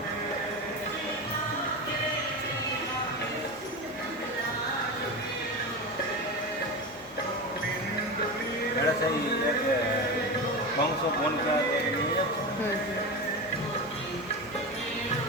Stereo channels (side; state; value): both; normal; correlation 0.23